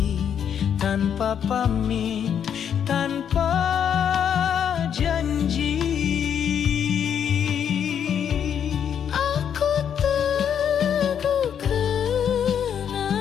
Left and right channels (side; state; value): right; quieter; 8.4 dB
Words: tanpa pamit, tanpa janji? Aku teguh